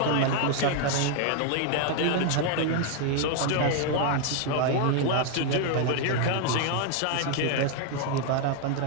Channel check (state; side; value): different; both; correlation 0.00